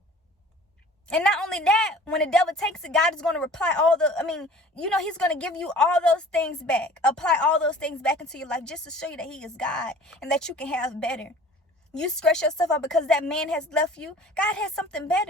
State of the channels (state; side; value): normal; both; correlation 0.46